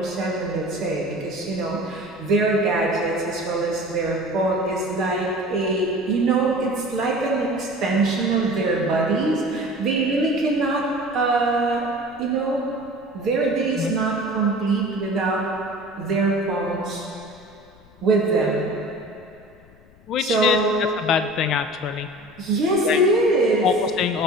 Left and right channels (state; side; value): noise; left; rumble, 26 dB below the sound